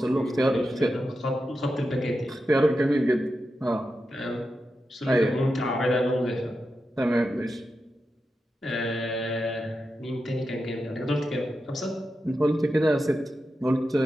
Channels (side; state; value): both; normal; correlation 0.89